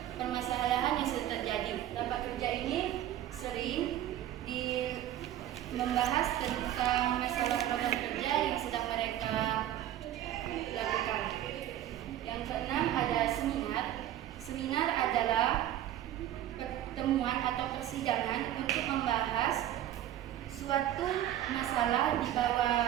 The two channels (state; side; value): quieter; left; 12.4 dB